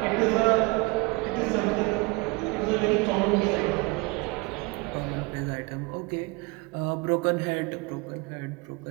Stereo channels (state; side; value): quieter; left; 25.9 dB